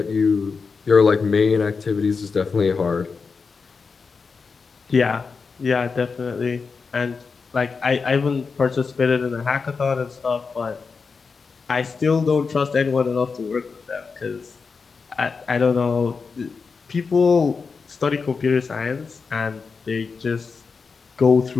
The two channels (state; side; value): quieter; right; 5.0 dB